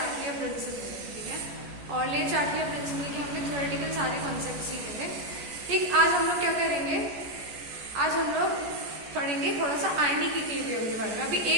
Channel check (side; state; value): left; late; 14 ms